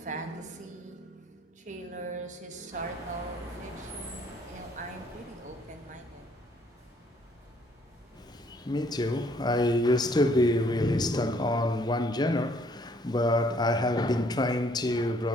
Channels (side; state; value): both; normal; correlation 0.64